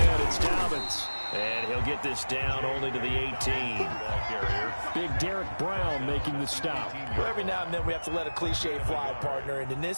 it's Dobbins. And he'll get this down only to the 18. Big Derek Brown making the stop. Well, every now and then we have to let a cliche fly, partner. And in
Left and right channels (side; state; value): both; inverted; correlation -1.00